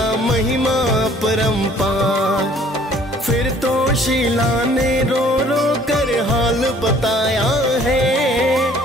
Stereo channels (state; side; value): normal; both; correlation 0.56